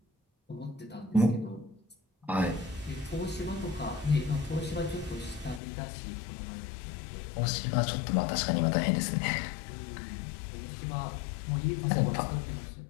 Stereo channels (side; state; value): right; drops out; at 5.6 s